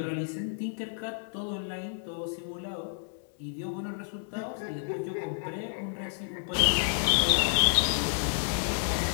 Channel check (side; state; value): right; silent; 58 dB below the other